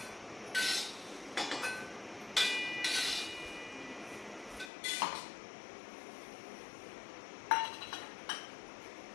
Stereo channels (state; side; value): drops out; right; at 4.7 s